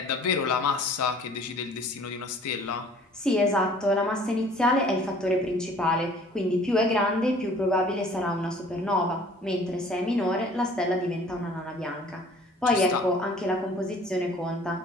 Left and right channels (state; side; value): normal; both; correlation 0.52